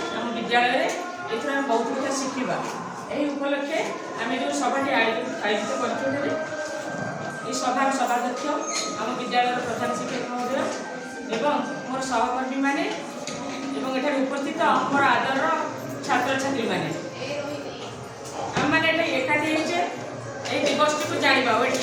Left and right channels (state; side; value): identical; both; correlation 1.00